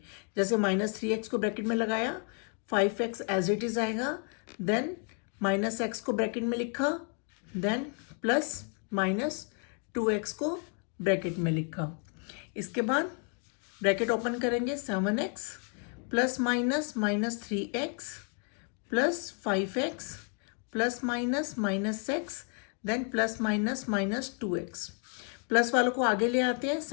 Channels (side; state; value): right; quieter; 39.8 dB